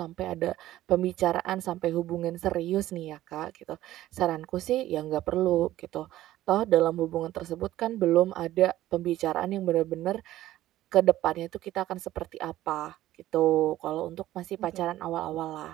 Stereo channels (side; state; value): left; quieter; 14.6 dB